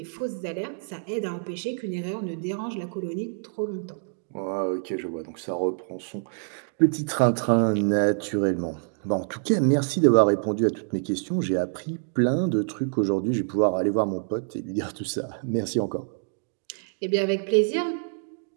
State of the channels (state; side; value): silent; left; digital silence